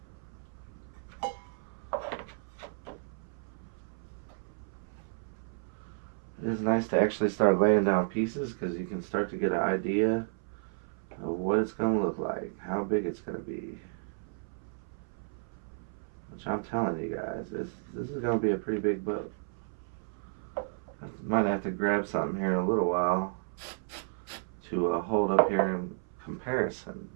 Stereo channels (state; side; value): silent; left; 56 dB below the other